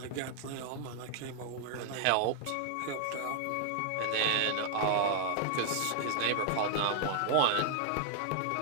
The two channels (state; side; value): different; both; correlation 0.00